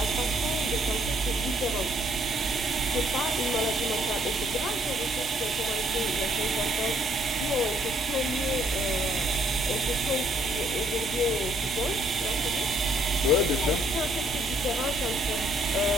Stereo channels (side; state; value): both; normal; correlation 0.67